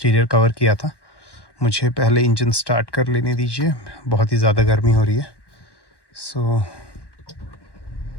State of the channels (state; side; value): late; right; 1.1 ms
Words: कवर किया था। मुझे पहले इंजन स्टार्ट कर लेने दीजिए, बहुत ही ज़्यादा गर्मी हो रही है। So